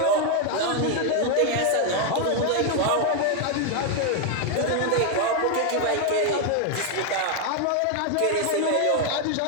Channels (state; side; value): different; both; correlation 0.01